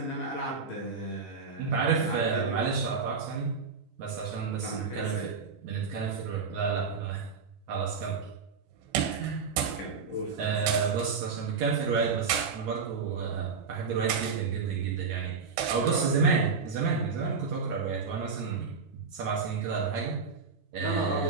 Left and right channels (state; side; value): quieter; left; 5.3 dB